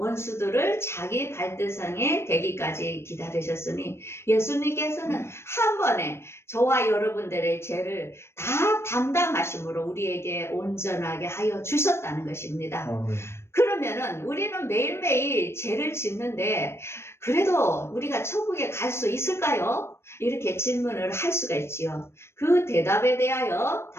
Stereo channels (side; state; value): right; late; 0.12 ms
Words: 자기 발등상에 대기까지 기다리셨으니 예수님께서는 한 번에 저와 여러분들의 죄를 다 담당하심으로 우리에게 온전하게 하여 주셨다는 것입니다. 그러면은 우리는 매일매일 죄를 짓는데 그래도 우리가 천국에 갈 수 있을까요? 이렇게 질문을 할 수가 있지요. 그 대답에 대하여